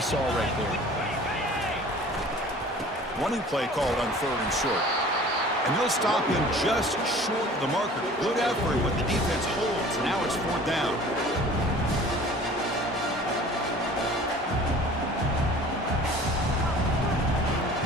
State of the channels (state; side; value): normal; both; correlation 0.46